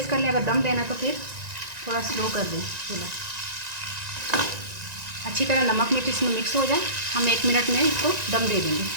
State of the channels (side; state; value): left; late; 1.9 ms